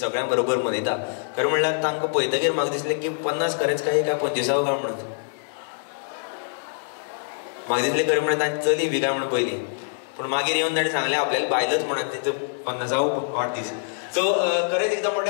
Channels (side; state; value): right; silent; digital silence